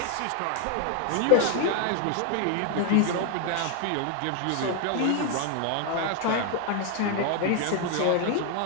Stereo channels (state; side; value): different; both; correlation 0.00